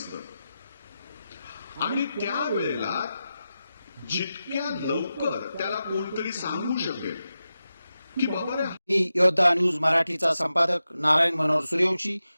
आणि त्यावेळेला जितक्या लवकर त्याला कोणतरी सांगू शकेल की बाबा रे. मी योद्धा न्यूज मराठीचा संपादक नारायण मनोहर सूर्यवंशी.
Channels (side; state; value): both; inverted; correlation -0.91